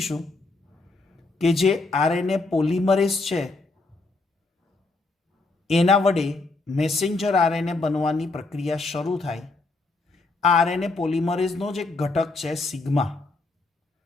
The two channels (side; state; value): right; quieter; 3.4 dB